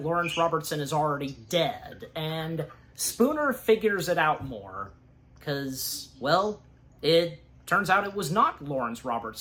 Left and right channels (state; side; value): identical; both; correlation 1.00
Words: Lawrence Robertson is already dead, and Spooner figures it out more, because, well, it turns out it was not Lawrence